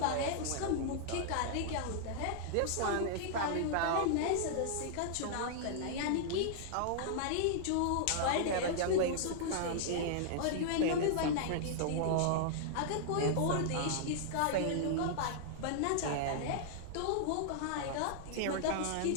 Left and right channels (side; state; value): both; different; correlation -0.01